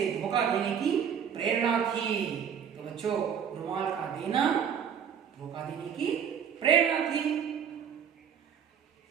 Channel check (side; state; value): left; quieter; 7.9 dB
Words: धोखा देने की प्रेरणा थी। तो बच्चों, रुमाल का देना धोखा देने की प्रेरणा थी।